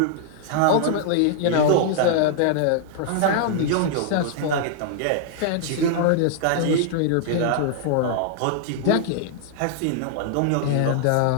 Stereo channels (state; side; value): different; both; correlation -0.01